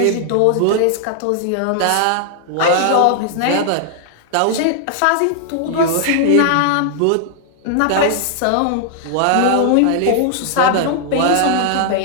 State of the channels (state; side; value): different; both; correlation 0.00